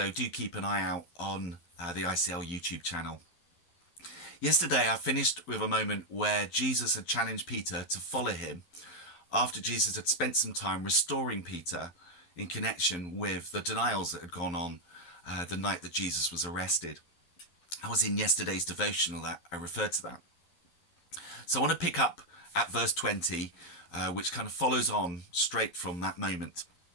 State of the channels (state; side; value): late; right; 11 ms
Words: do keep an eye out on the ICL YouTube channel. Yesterday I finished with a moment where Jesus had challenged Peter to follow him after Jesus had spent some time restoring Peter in connection with the denials that had gone on the night that Jesus was arrested. I was in yesterday's devotional that I referred to that. So I want to pick up at verse 20, which kind of follows on straight from that moment.